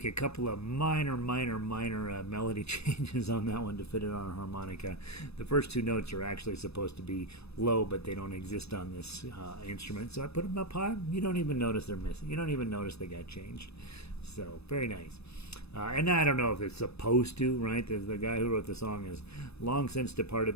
a couple of minor melody changes on that one to fit it on a harmonica. The first two notes are actually supposed to be low, but they don't exist on this instrument, so I put them up high. You don't even notice they're missing. You don't even notice they got changed. So very nice. And I don't know if it's supposed to, right? The guy who wrote the song is long since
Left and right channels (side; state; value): right; late; 0.79 ms